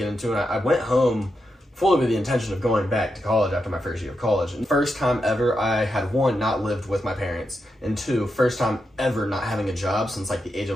into it. I went home fully with the intention of going back to college after my first year of college. And first time ever, I had one, not lived with my parents, and two, first time ever not having a job since like the age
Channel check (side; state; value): both; normal; correlation 0.86